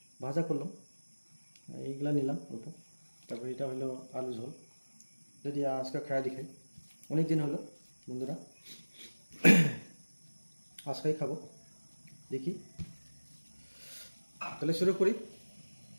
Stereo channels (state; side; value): inverted; both; correlation -1.00